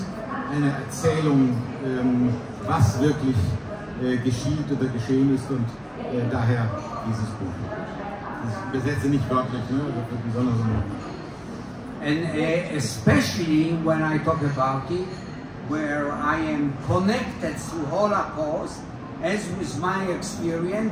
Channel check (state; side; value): identical; both; correlation 1.00